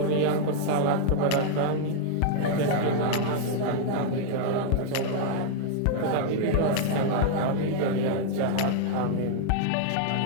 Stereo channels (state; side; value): different; both; correlation -0.01